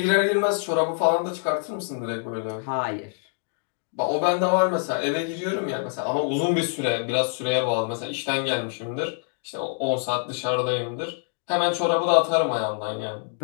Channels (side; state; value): right; silent; 57 dB below the other